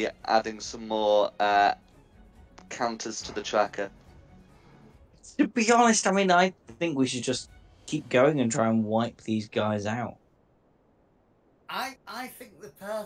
adding some more counters to the tracker. To be honest, I mean, I think we should just keep going and try and wipe these guys out. I think the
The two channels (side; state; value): both; identical; correlation 1.00